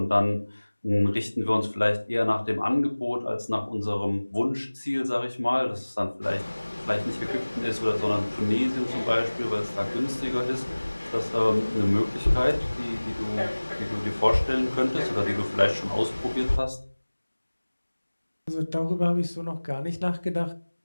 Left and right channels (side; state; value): both; inverted; correlation -1.00